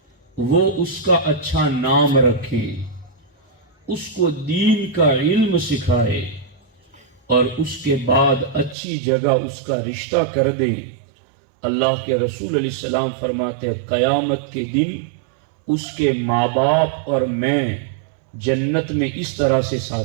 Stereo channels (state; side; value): drops out; left; at 8.8 s